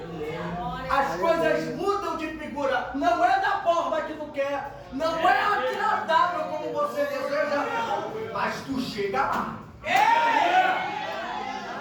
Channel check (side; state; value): both; identical; correlation 1.00